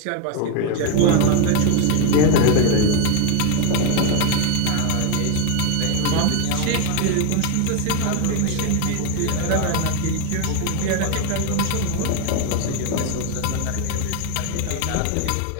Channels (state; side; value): different; both; correlation 0.01